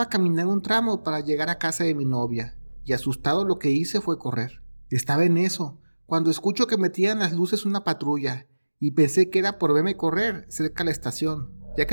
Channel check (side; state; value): both; inverted; correlation -1.00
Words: caminar un tramo para llegar a casa de mi novia, y asustado lo que hice fue correr. Estaba en eso, cuando escucho que metían las luces una patrulla, y pensé que era por verme correr cerca de la estación, ya